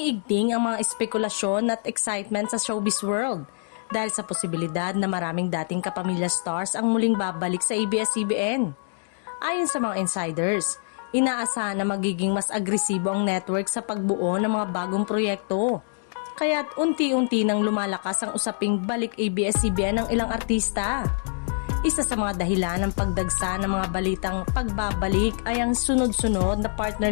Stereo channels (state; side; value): silent; right; digital silence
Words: ang mga espekulasyon at excitement sa showbiz world dahil sa posibilidad na maraming dating kapamilya stars ang muling babalik sa ABS-CBN. Ayon sa mga insiders, inaasahan na magiging mas agresibo ang network sa pagbuo ng mga bagong proyekto. Kaya't unti-unti nang lumalakas ang usaping balik ABS-CBN ng ilang artista. Isa sa mga dahilan ng pagdagsa ng mga balitang pagbabalik ay ang sunod-sunod na